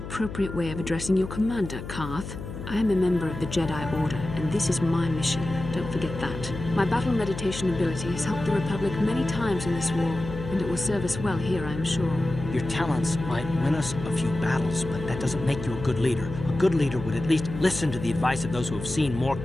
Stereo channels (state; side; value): noise; left; hum, 9 dB below the sound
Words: way of addressing your commander, Karth. I am a member of the Jedi Order, and this is my mission. Don't forget that. My battle meditation ability has helped the Republic many times in this war, and it will serve us well here, I am sure. Your talents might win us a few battles, but that doesn't make you a good leader. A good leader would at least listen to the advice of those who have seen more